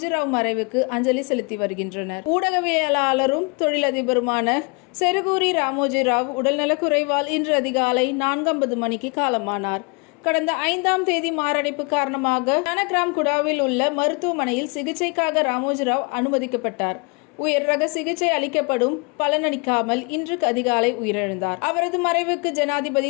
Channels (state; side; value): quieter; right; 31.6 dB